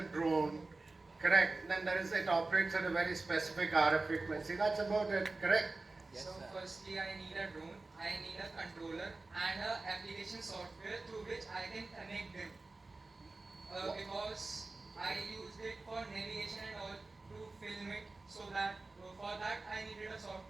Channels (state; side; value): quieter; left; 3.3 dB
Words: drone, correct? Then it operates at a very specific RF frequency. That's about it, correct? Yes, so firstly I need a drone, I need a controller and a application software through which I can connect them. Because I used it for navigation and all to film it, so that for that I needed a